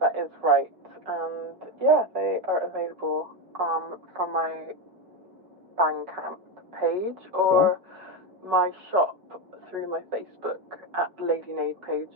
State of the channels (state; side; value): late; left; 5.4 ms